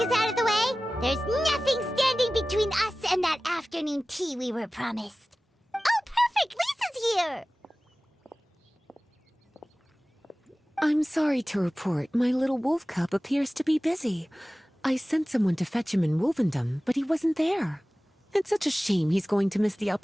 out of the way, there's nothing standing between us and that afternoon tea we were promised. Oh, perfect! Lisa's here! I'm sorry to report, my little wolf cub appears to be busy. I sent someone to fetch him in Wolvendom, but he wasn't there. It's such a shame he's going to miss the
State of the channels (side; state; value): both; normal; correlation 0.97